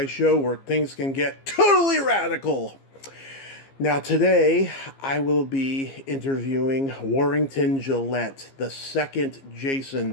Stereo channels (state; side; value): late; right; 15 ms